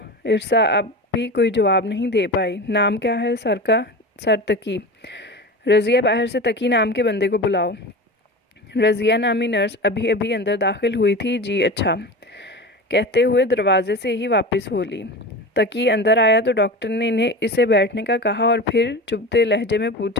ارسا اب بھی کوئی جواب نہیں دے پائی۔ نام کیا ہے سر کا؟ سرتقی۔ رضیہ باہر سے تقی نام کے بندے کو بلاؤ۔ رضیہ نامی نرس ابھی ابھی اندر داخل ہوئی تھی۔ جی اچھا کہتے ہوئے دروازے سے ہی واپس ہو لی۔ تقی اندر آیا تو ڈاکٹر نے اسے بیٹھنے کا کہا اور پھر چبھتے لہجے میں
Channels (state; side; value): normal; both; correlation 0.29